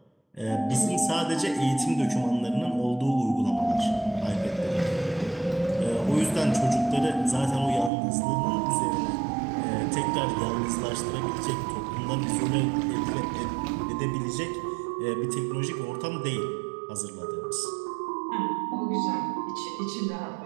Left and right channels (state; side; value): drops out; left; at 7.9 s